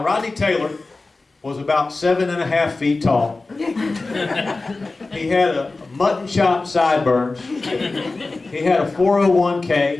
Rodney Taylor was about 7.5 feet tall. He had a mutton chop sideburns. He had a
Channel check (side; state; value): right; quieter; 3.5 dB